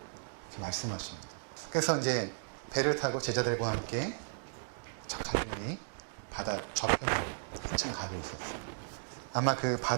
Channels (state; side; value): silent; left; digital silence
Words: 이렇게 말씀하십니다. 그래서 이제 배를 타고 제자들과 함께 저 갈릴리 바다 저편으로 한참 가고 있었어요. 아마 그